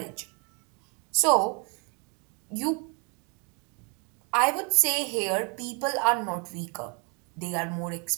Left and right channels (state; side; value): quieter; left; 34.7 dB